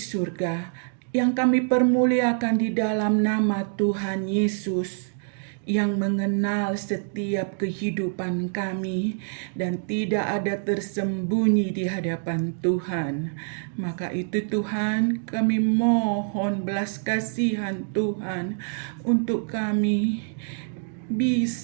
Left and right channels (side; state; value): left; silent; digital silence